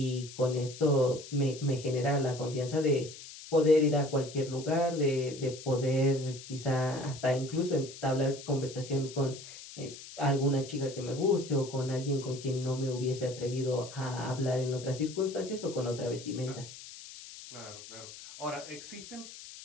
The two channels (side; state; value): left; noise; hiss, 14 dB below the sound